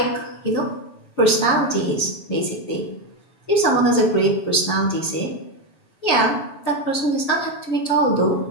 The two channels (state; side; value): late; right; 7.1 ms